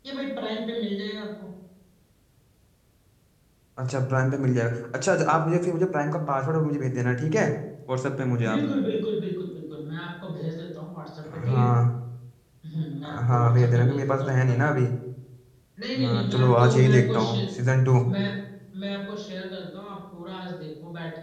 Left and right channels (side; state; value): both; identical; correlation 1.00